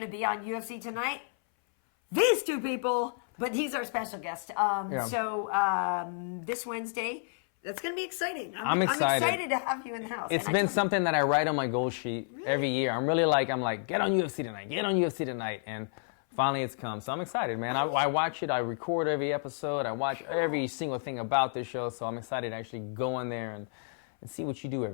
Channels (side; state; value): right; silent; 57 dB below the other